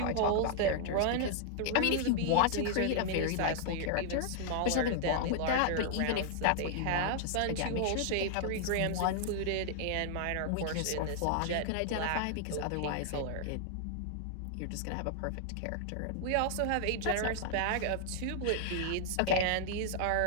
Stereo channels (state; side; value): different; both; correlation -0.01